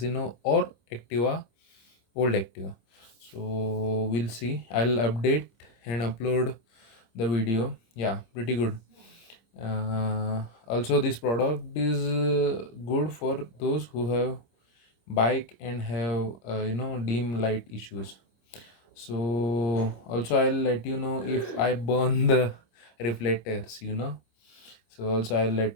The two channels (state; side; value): late; right; 26 ms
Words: or Activa, old Activa. So we'll see. I'll update and upload the video. Yeah, pretty good. Also, this product is good for those who have bike and have dim light issues. So also I'll let you know if I burn the reflectors. So also I'll let